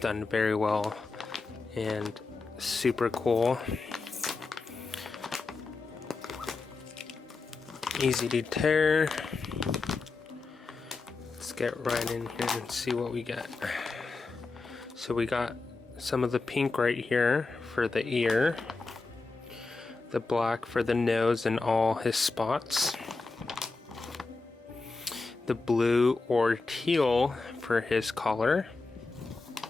very well and super cool. Easy to tear. Let's get right in here and see what we got. So we got some of the pink right here for the ear, the black for the nose and all his spots, the blue or teal for his collar,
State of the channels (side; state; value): right; quieter; 3.9 dB